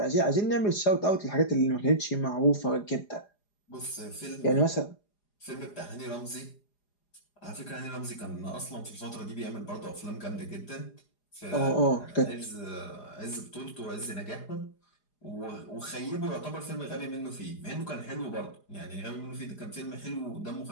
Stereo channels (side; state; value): right; late; 4.9 ms